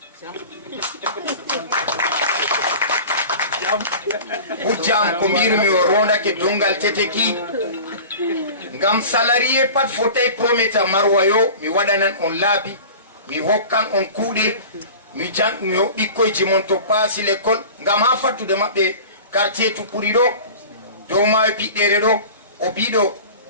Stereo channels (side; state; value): both; inverted; correlation -0.38